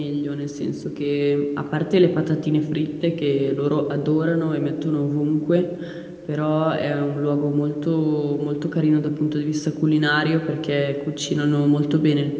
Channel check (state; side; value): identical; both; correlation 1.00